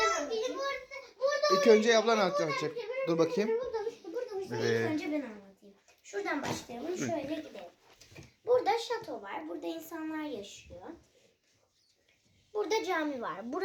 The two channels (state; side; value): identical; both; correlation 1.00